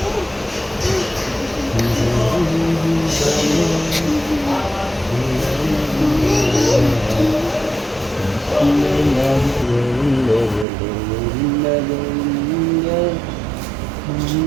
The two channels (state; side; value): drops out; left; at 10.7 s